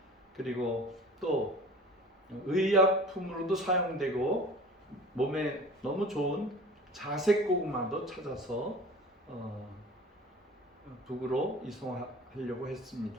그리고 또 의약품으로도 사용되고 몸에 너무 좋은 자색 고구마도 찾아서 북으로 이송하려고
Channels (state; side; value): normal; both; correlation 0.41